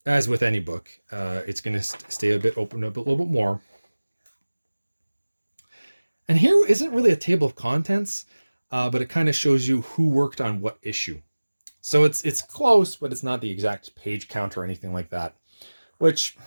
as with any book, it's going to stay a bit open up a little bit more. And here isn't really a table of contents, but it kind of shows you who worked on what issue. So it's close, but it's not the exact page count or anything like that. Which,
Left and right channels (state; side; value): inverted; both; correlation -1.00